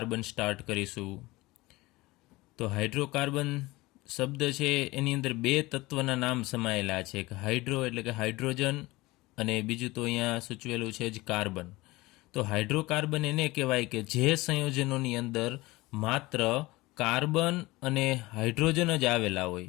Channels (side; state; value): right; quieter; 20.7 dB